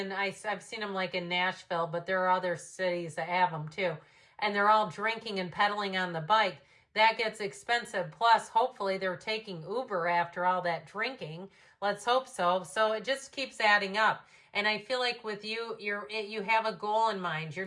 I've seen them like in Nashville, but there are other cities that have them too. And they're all drinking and pedaling on the bike. That gets expensive. Plus, hopefully they're taking Uber after all that drinking. Let's hope so. So it just keeps adding up. And I feel like with you, you have a goal in mind. You're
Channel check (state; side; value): identical; both; correlation 1.00